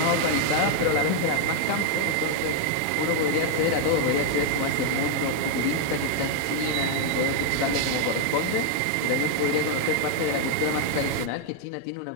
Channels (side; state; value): both; different; correlation 0.00